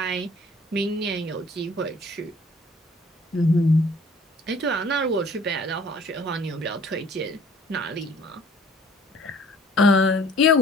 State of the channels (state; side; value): normal; both; correlation 0.54